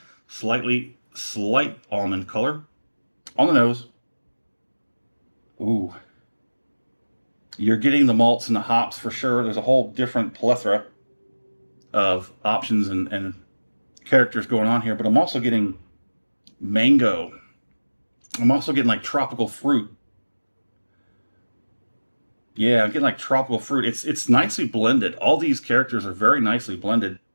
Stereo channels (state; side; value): inverted; both; correlation -1.00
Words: slight almond color. On the nose. Ooh. You're getting the malts and the hops for sure. There's a whole different plethora of options and characters going on here, but I'm also getting mango. I'm also getting like tropical fruit. Yeah, I'm getting like tropical fruit. It's nicely blended. All these characters are very nicely blended.